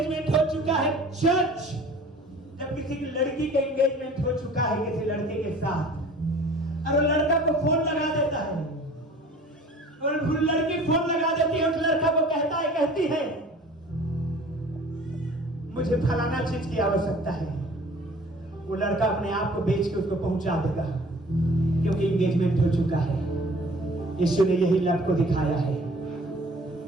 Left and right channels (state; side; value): normal; both; correlation 0.48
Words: हो चुका है, चर्च, जब किसी की लड़की का एंगेजमेंट हो चुका है किसी लड़के के साथ, और वो लड़का को फोन लगा देता है, और लड़की फोन लगा देती है, उस लड़का को कहता है, कहती है, मुझे फलाना चीज की आवश्यकता है। वो लड़का अपने आप को बेच के उसको पहुंचा देगा, क्योंकि एंगेजमेंट हो चुका है। यीशु ने यही लव को दिखाया है,